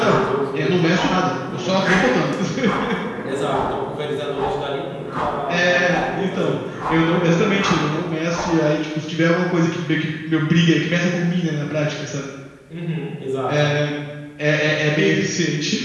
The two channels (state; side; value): identical; both; correlation 1.00